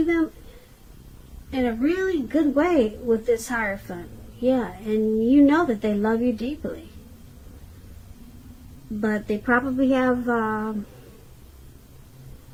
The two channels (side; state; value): both; identical; correlation 1.00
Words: them in a really good way with this Hierophant. Yeah, and you know that they love you deeply. But they probably have